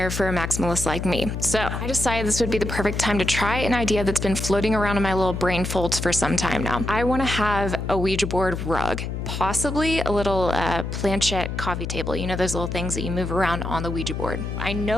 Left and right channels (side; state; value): left; noise; hum, 4 dB below the sound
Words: for a maximalist like me. So I decided this would be the perfect time to try an idea that's been floating around in my little brain folds for some time now. I want to have a Ouija board rug. Possibly a little planchette coffee table, you know, those little things that you move around on the Ouija board. I